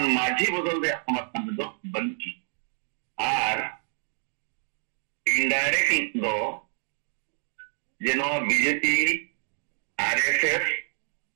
माझी बदल दे समर्थन दे दो बंकी आर इनडायरेक्ट दो जेनो बीजेपी आरएसएस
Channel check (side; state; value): left; silent; 60 dB below the other